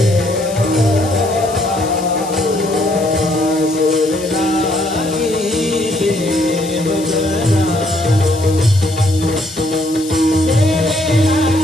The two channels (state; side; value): noise; left; hiss, 14 dB below the sound